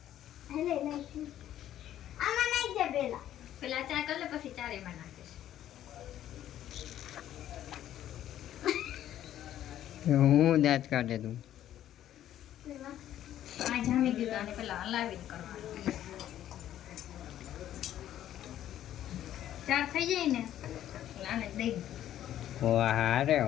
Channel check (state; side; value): quieter; right; 11.8 dB